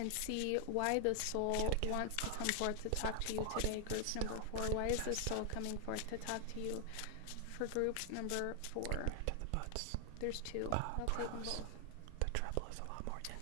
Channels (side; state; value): both; different; correlation 0.00